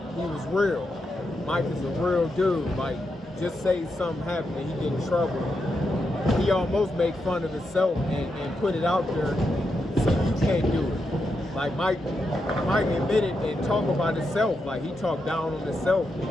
he was real. Mike is a real dude. Like just say something happened and he get in trouble, he almost make fun of himself and put it out there so you can't do it. Like Mike admitted and talk about himself. Like he talked down on himself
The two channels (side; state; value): both; normal; correlation 0.84